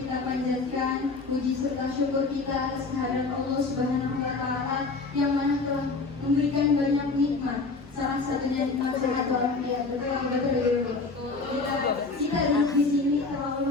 panjatkan puji serta syukur kita atas kehadiran Allah Subhanahu wa Ta'ala yang mana telah memberikan banyak nikmat. Salah satunya nikmat sehat walafiat. Betul. Kita duduk di sini telah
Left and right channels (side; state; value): right; quieter; 3.9 dB